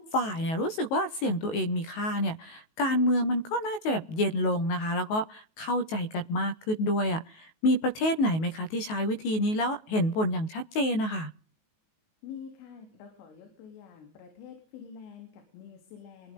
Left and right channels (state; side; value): late; right; 19 ms